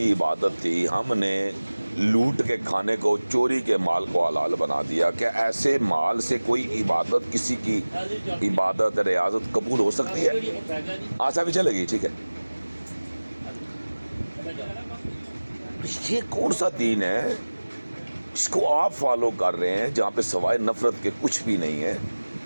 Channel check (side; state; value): both; inverted; correlation -1.00